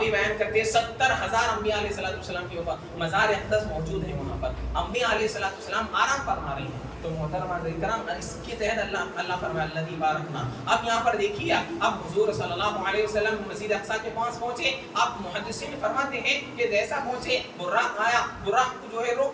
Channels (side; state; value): both; identical; correlation 1.00